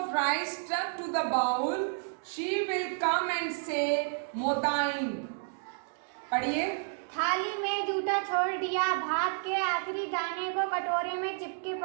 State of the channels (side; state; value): left; silent; 57 dB below the other